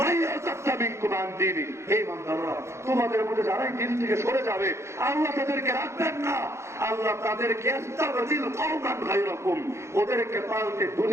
তোমাদের মধ্যে যারাই দিন থেকে সরে যাবে আল্লাহ তাদেরকে রাখবেন না, আল্লাহ তাদেরকে ওদেরকে পাল্টে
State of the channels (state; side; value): late; left; 0.13 ms